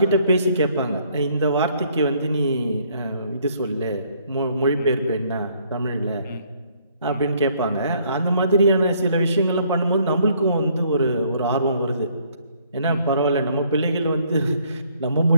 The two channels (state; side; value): inverted; both; correlation -0.65